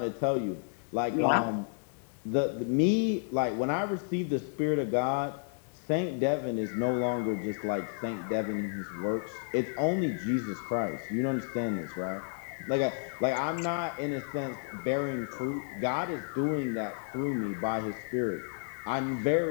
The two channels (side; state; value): right; silent; digital silence